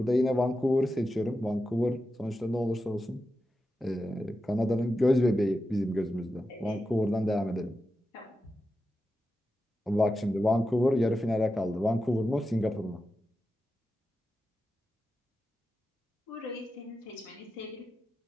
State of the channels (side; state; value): both; normal; correlation 0.90